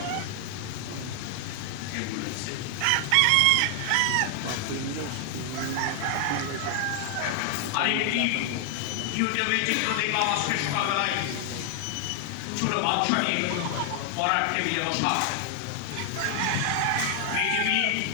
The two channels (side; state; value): both; different; correlation 0.00